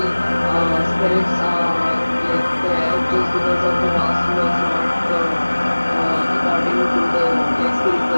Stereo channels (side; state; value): both; inverted; correlation -1.00